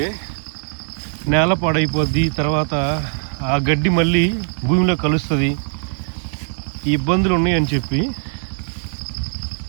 నేల పాడైపోద్ది. తర్వాత ఆ గడ్డి మళ్ళీ భూమిలో కలుస్తుంది. ఈ ఇబ్బందులు ఉన్నాయని చెప్పి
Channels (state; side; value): silent; left; 66 dB below the other